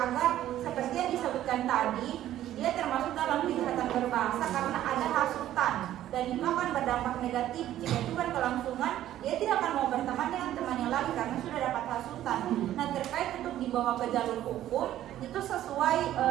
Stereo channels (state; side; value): quieter; left; 12.7 dB